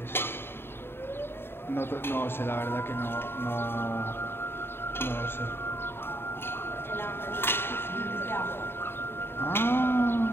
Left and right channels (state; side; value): late; right; 0.11 ms